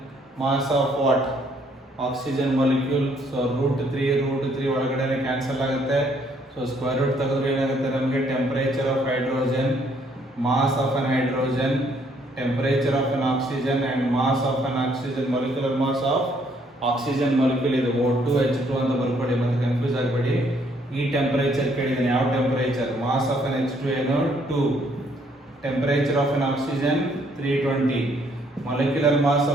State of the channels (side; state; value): both; normal; correlation 0.67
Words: mass of what? Oxygen molecule. So root 3 ಒಳಗಡೆ ಕ್ಯಾನ್ಸಲ್ ಆಗುತ್ತೆ. ಸೊ ಸ್ಕ್ವೇರ್ ರೂಟ್ ತೆಗೆದ್ರೆ ಏನಾಗುತ್ತೆ ನಮಗೆ? Temperature of hydrogen, mass of an hydrogen, temperature of an oxygen and mass of an oxygen, molecular mass of oxygen molecule. ಇದು O2 H2 ಅಂತ ಬರ್ಕೊಡಿ, ಮತ್ತೆ ಕನ್ಫ್ಯೂಸ್ ಆಗಬೇಡಿ. ಈ ಟೆಂಪರೇಚರ್ ಕೇಳಿದಾನೆ. ಯಾವ ಟೆಂಪರೇಚರ್? ಮಾಸ್ ಆಫ್ ಅನ್ H2 ಏನು? 2. Temperature of an oxygen 320. molecular mass